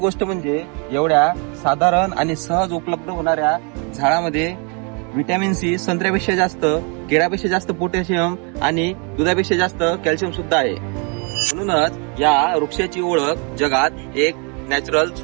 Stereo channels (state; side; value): quieter; left; 35.2 dB